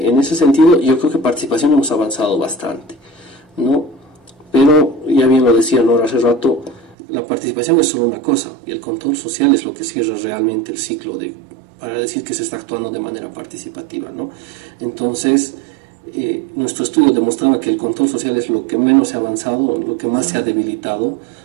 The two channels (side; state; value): left; drops out; at 7.0 s